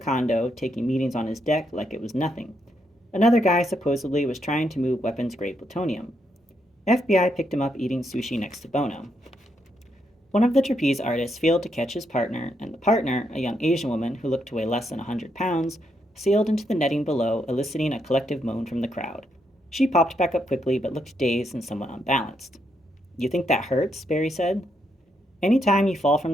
taking meetings on his deck like it was nothing. Another guy supposedly was trying to move weapons-grade plutonium. FBI picked him up eating sushi next to Bono. One of the trapeze artists failed to catch his partner, and the partner, a young Asian woman who looked to weigh less than 100 pounds, sailed into the netting below, eliciting a collective moan from the crowd. She popped back up quickly but looked dazed and somewhat unbalanced. You think that hurts? Barry said. Any time you fall from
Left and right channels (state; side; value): normal; both; correlation 0.78